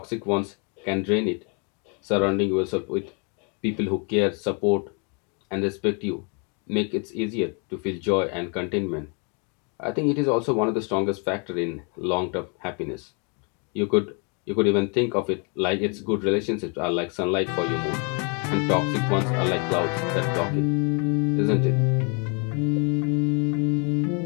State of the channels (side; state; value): right; quieter; 36.3 dB